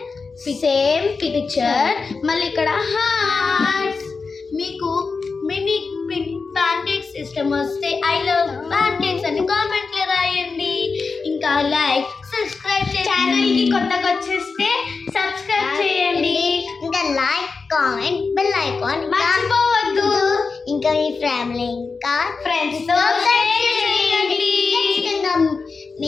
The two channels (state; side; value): quieter; right; 4.6 dB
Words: సేమ్ పిక్చర్, మళ్ళీ ఇక్కడ హార్ట్స్. మీకు మినీ ప్యాన్ కేక్స్ ఇష్టం వస్తే ఐ లవ్ ప్యాన్ కేక్స్ అని కామెంట్ లో రాయండి. ఇంకా లైక్ సబ్స్క్రైబ్ ఛానల్ కి కొత్తగా వచ్చేస్తే సబ్స్క్రైబ్ చేయండి. ఇంకా లైక్, కామెంట్, బెల్ ఐకాన్ మర్చిపోవద్దు. ఇంకా మీ ఫ్యామిలీ ఇంకా ఫ్రెండ్స్ తో షేర్ చేయండి.